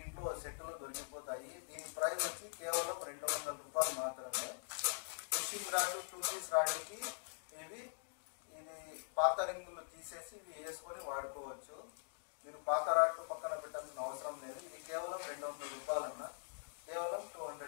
సెట్లు దొరికిపోతాయి. దీని ప్రైస్ వచ్చి కేవలం 200 రూపాయలు మాత్రమే. ఫిషింగ్ రాడ్ 2 పీస్ రాడ్కి ఇవి ఇది పాత రింగులు తీసేసి ఇవి వేసుకొని వాడుకోవచ్చు. మీరు పాత రాడ్లు పక్కన పెట్టాల్సిన అవసరం లేదు. ఇది కేవలం 200 రూపాయలు అన్న, కేవలం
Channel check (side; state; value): right; silent; digital silence